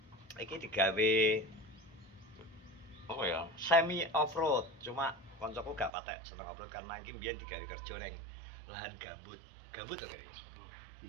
iki digawe apa ya? Semi off-road. Cuma koncoku gak patek seneng off-road karena iki mbiyen digawe kerja ning lahan gambut. Gambut to kene.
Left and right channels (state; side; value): drops out; left; at 5.9 s